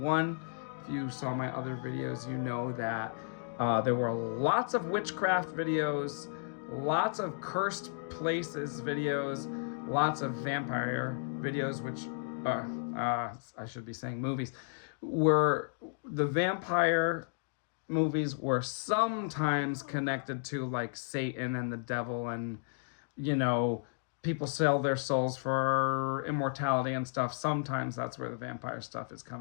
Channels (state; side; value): silent; right; digital silence